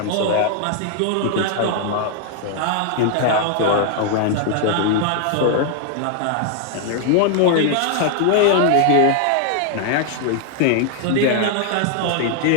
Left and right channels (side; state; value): both; different; correlation 0.00